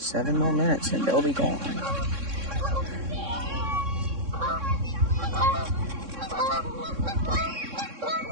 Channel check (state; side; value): late; left; 3.6 ms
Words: more minutes and they'll be gone.